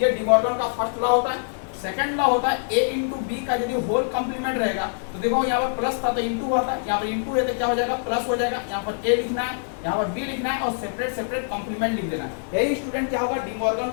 ये डी मॉर्गन का फर्स्ट लॉ होता है। सेकंड लॉ होता है a इंटू बी का यदि होल कॉम्प्लीमेंट रहेगा तो देखो यहाँ पर प्लस था तो इंटू हुआ था, यहाँ पर इंटू है तो क्या हो जाएगा प्लस हो जाएगा। यहाँ पर a लिखना है, यहाँ पर b लिखना है और सेपरेट सेपरेट कॉम्प्लीमेंट लिख देना है। यही स्टूडेंट क्या होगा डी मॉर्गन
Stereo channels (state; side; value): silent; right; digital silence